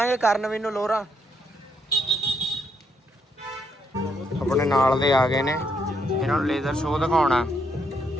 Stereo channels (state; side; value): normal; both; correlation 0.75